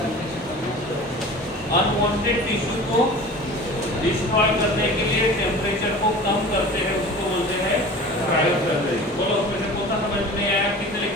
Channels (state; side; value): normal; both; correlation 0.39